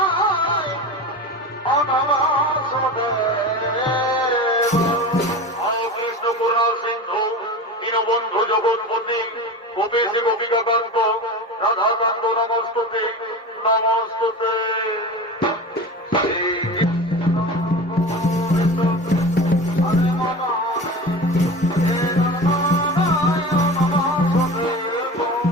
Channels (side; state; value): both; normal; correlation 0.30